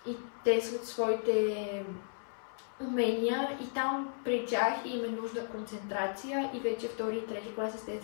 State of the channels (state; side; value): silent; right; 55 dB below the other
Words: и тестват своите умения и там при тях им е нужда концентрация и вече втори и трети клас,